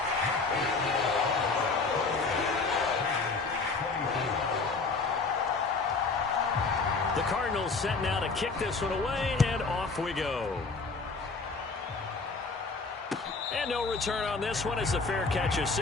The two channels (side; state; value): right; quieter; 4.2 dB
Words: The Cardinals set now to kick this one away, and off we go. And no return on this one as the fair catch is